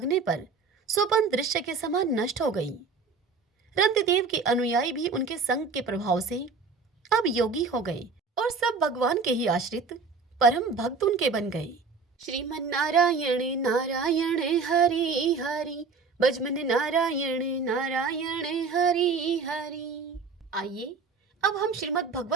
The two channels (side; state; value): left; quieter; 4.7 dB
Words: पर स्वप्न दृश्य के समान नष्ट हो गई। रंतिदेव के अनुयायी भी उनके संग के प्रभाव से अब योगी हो गए और सब भगवान के ही आश्रित परम भक्त उनके बन गए। श्रीमन नारायण नारायण हरि हरि, भजमन नारायण नारायण हरि हरि। आइए अब हम श्रीमद्